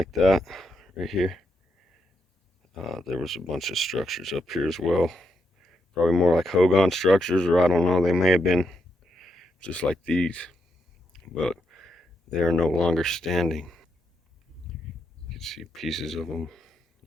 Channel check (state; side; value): normal; both; correlation 0.81